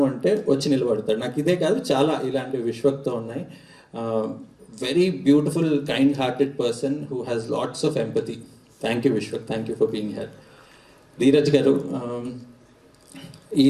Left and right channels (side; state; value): both; identical; correlation 1.00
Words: వచ్చి నిలబడతాడు. నాకు ఇదే కాదు, చాలా ఇలాంటివి విశ్వక్తో ఉన్నాయి. Very beautiful, kind-hearted person who has lots of empathy. Thank you, Vishwak. Thank you for being here. Dheeraj garu, ఈ